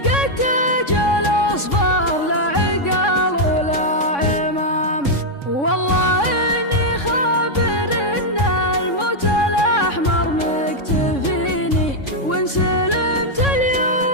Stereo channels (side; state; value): right; late; 3.6 ms